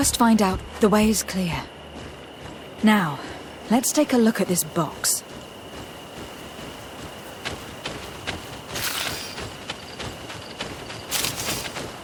find out the way is clear. Now, let's take a look at this box.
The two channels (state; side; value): identical; both; correlation 1.00